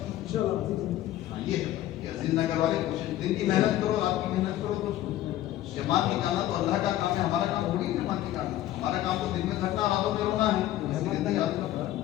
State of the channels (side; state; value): right; quieter; 13.9 dB